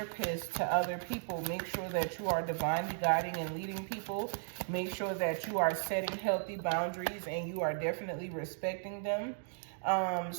to other people, make sure that you are divinely guiding and leading people. Make sure that you are setting healthy boundaries and you are definitely respecting them.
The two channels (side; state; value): left; silent; digital silence